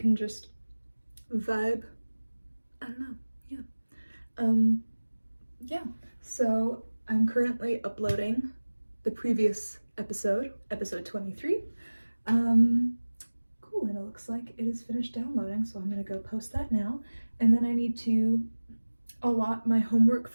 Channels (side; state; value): both; inverted; correlation -1.00